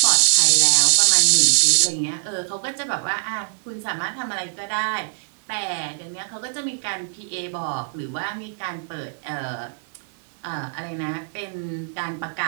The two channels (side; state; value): left; silent; digital silence